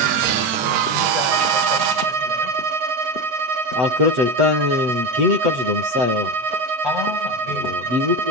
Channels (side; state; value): left; late; 7.9 ms